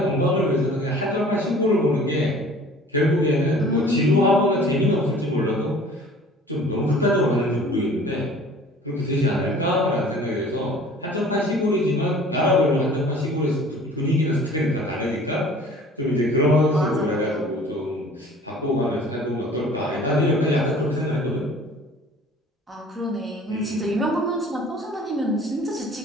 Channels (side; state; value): both; normal; correlation 0.48